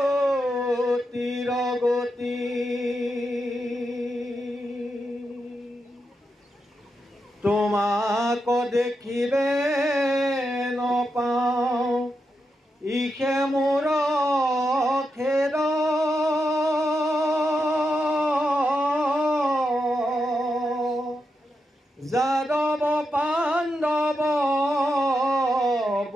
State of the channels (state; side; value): normal; both; correlation 0.86